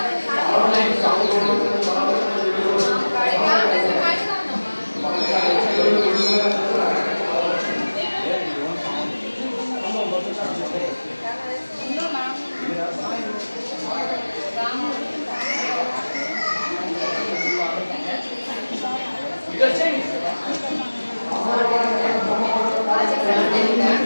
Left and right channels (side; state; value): both; inverted; correlation -1.00